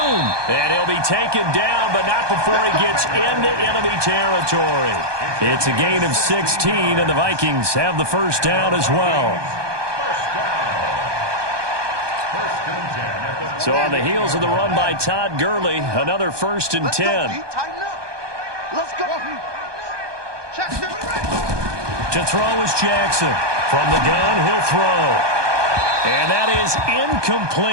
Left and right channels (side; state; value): left; late; 1.2 ms